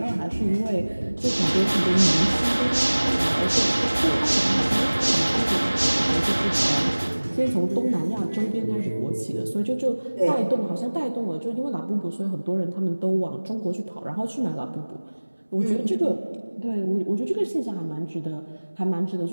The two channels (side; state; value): both; inverted; correlation -1.00